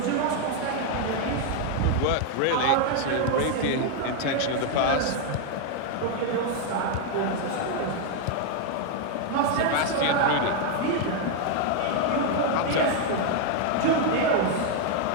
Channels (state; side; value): different; both; correlation 0.00